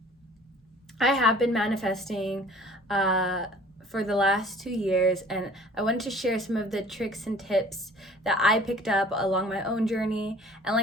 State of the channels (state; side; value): normal; both; correlation 0.49